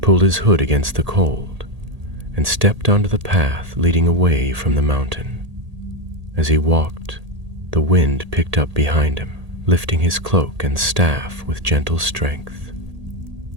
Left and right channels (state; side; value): late; left; 1.8 ms